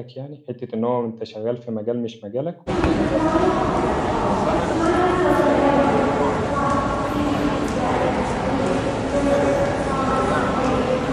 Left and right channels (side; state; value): both; identical; correlation 1.00